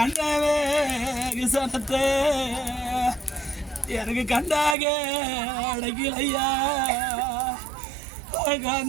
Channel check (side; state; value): left; drops out; at 4.8 s